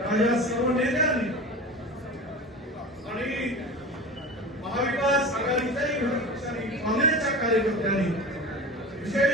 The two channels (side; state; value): both; normal; correlation 0.32